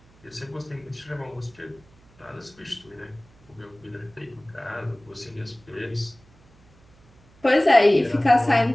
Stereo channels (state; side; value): noise; right; hum, 29 dB below the sound